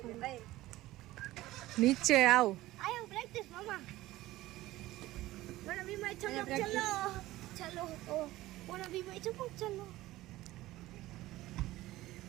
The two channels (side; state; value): left; quieter; 17.0 dB